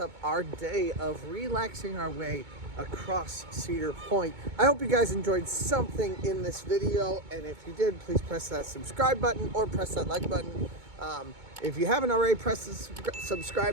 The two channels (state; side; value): late; left; 2.2 ms